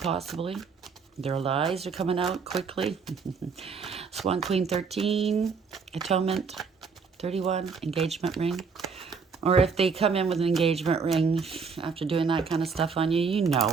Their lies are coming out quickly. Swan Queen 13, Atonement 31, Engagement ring. Or if they come in with an engagement ring after doing that kind of stuff on you, you know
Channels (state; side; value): quieter; left; 5.4 dB